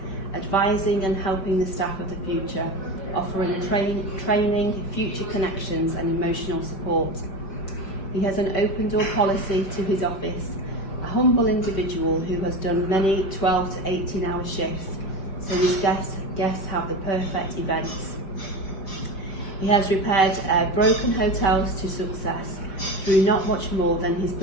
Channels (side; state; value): right; late; 5.1 ms